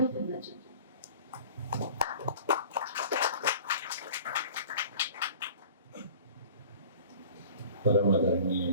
खन्ना जी। परम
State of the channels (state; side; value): inverted; both; correlation -0.45